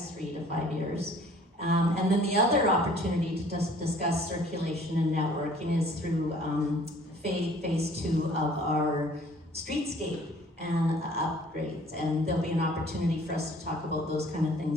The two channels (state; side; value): normal; both; correlation 0.53